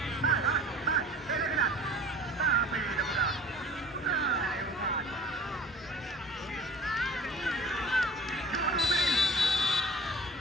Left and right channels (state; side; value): normal; both; correlation 0.44